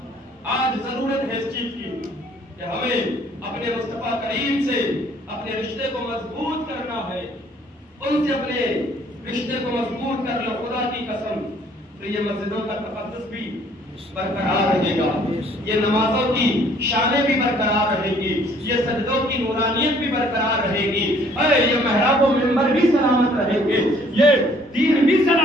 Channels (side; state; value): both; normal; correlation 0.60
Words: آج ضرورت ہے اس چیز کی کہ ہمیں اپنے مصطفیٰ کریم سے اپنے رشتے کو مضبوط کرنا ہے. ان سے اپنے رشتے کو مضبوط کر لو. خدا کی قسم تو یہ مسجدوں کا تقدس بھی برقرار رہے گا, یہ نمازوں کی شانیں بھی برقرار رہے گی, یہ سجدوں کی نورانیت بھی برقرار رہے گی, یہ محراب و منبر بھی سلامت رہیں گے, یہ دین بھی